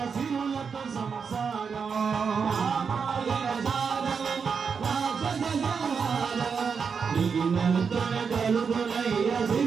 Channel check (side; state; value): left; quieter; 5.9 dB